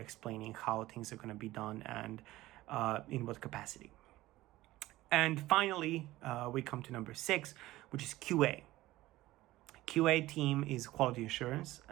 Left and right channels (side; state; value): left; quieter; 17.1 dB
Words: how things are going to be done and in what capacity. And finally, we come to number 6, which is QA. QA team is quality assurance,